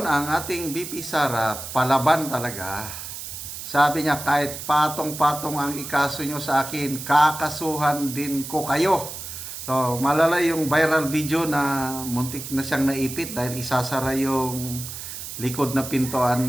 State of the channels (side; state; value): right; noise; hiss, 9 dB below the sound